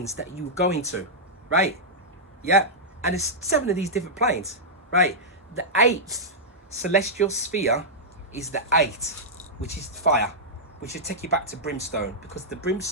that you go into, right? Yeah, and there's 7 of these different planes, right? The 8th celestial sphere is the 8, which is fire, which will take you back to brimstone, because the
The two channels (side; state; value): both; normal; correlation -0.09